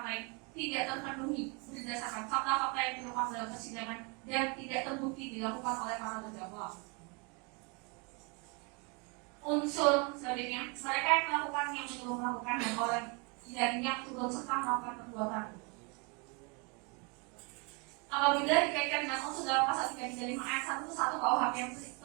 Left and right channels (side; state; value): left; quieter; 32.0 dB